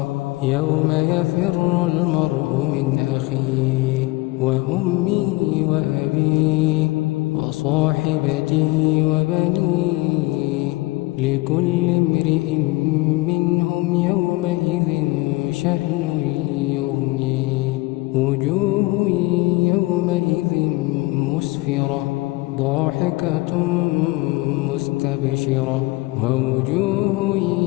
يوم يفر المرء من أخيه وأمه وأبيه وصاحبته وبنيه لكل امرئ منهم يومئذ شأن يغنيه. وجوه يومئذ مسفرة ضاحكة مستبشرة ووجوه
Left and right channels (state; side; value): quieter; right; 21.4 dB